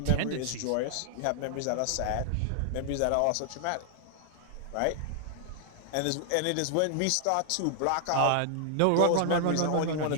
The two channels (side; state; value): both; different; correlation -0.01